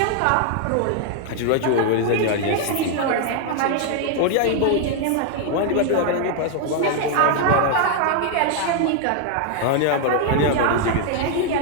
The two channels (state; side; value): different; both; correlation 0.00